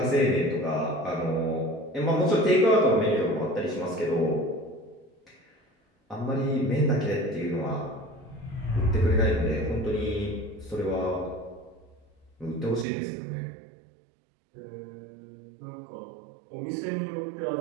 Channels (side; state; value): left; drops out; at 12.9 s